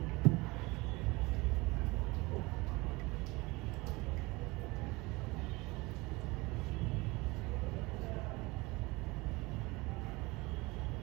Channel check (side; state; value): left; quieter; 23.3 dB